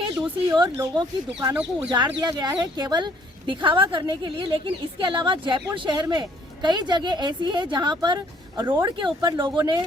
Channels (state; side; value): normal; both; correlation 0.62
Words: दूसरी ओर लोगों की दुकानों को उजाड़ दिया गया है केवल दिखावा करने के लिए। लेकिन इसके अलावा जयपुर शहर में कई जगह ऐसी है जहाँ पर रोड के ऊपर लोगों ने